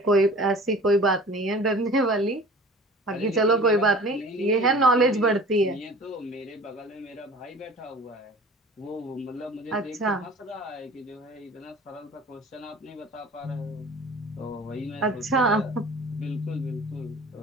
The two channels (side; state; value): both; normal; correlation 0.44